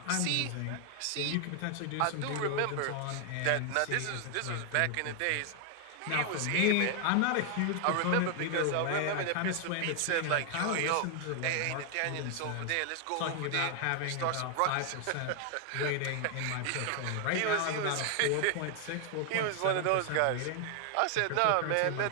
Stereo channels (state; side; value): different; both; correlation 0.00